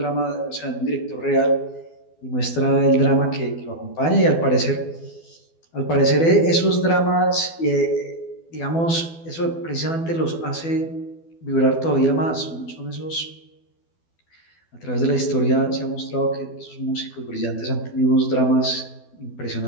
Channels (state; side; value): late; right; 12 ms